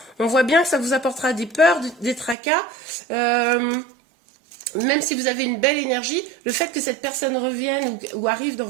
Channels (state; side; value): drops out; left; at 2.4 s